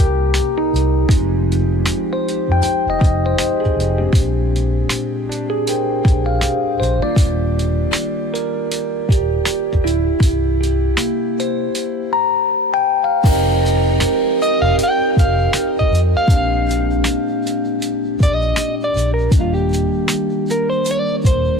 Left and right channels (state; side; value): normal; both; correlation 0.55